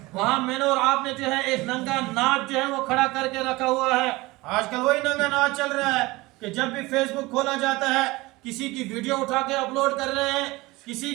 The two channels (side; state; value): left; quieter; 21.3 dB